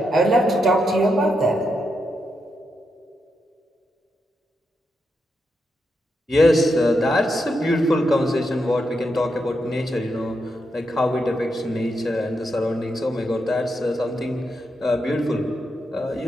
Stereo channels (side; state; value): both; normal; correlation 0.83